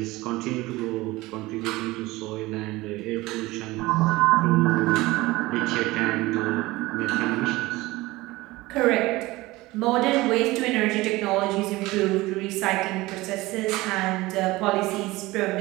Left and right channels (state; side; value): quieter; left; 19.9 dB